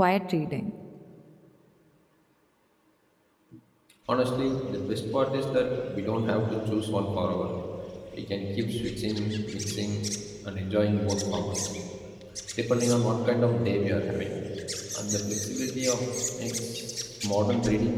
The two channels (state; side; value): identical; both; correlation 1.00